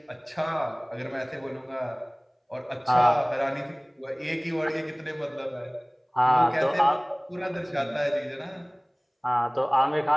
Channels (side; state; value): both; identical; correlation 1.00